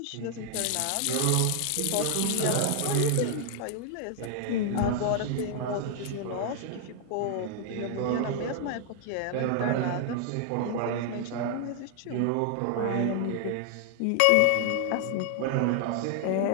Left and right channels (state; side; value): different; both; correlation 0.00